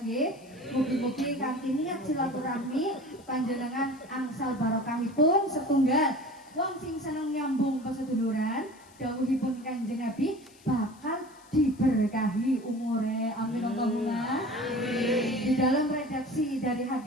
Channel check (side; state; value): left; noise; hiss, 27 dB below the sound